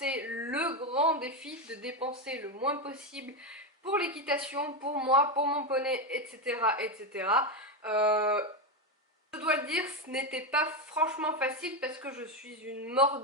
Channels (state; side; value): normal; both; correlation 0.11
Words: le grand défi de dépenser le moins possible pour l'équitation, pour moi, pour mon poney, etc. etc. Je dois le dire, ce n'était pas franchement facile parce que je suis une